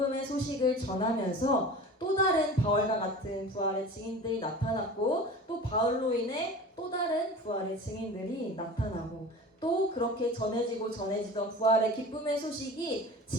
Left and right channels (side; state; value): both; normal; correlation 0.37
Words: 소식을 전하면서 또 다른 바울과 같은 부활의 증인들이 나타났고, 또 바울로 인해 또 다른 부활의 증인들이 나타나고, 또 그렇게 전해지던 부활의 기쁨의 소식이